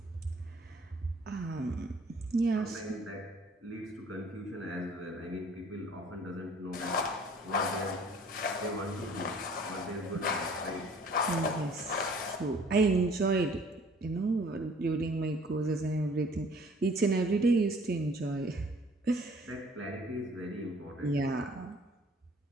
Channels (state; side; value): normal; both; correlation 0.54